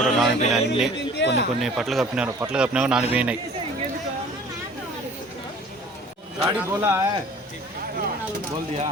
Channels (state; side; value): normal; both; correlation 0.49